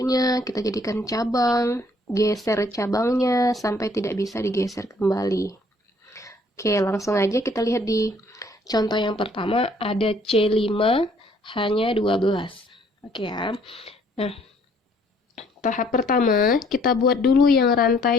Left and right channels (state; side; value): normal; both; correlation 0.62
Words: kita jadikan cabang, geser cabangnya sampai tidak bisa digeser kembali. Oke, langsung aja kita lihat di contoh yang pertama, ada C5 hanya 12. Oke ya. Nah, tahap pertama, kita buat dulu yang